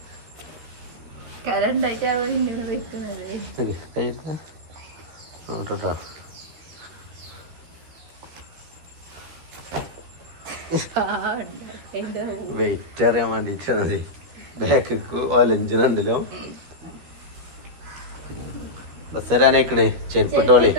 നോട്ടോ വെയിറ്റ് അറിയാൻ വേണ്ടിട്ടാണ്. ബാക്ക് ഒലഞ്ചുണ്ടല്ലോ. ബസ് വരാനേക്കണേ. ചെരുപ്പിട്ടോളി.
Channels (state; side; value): late; left; 13 ms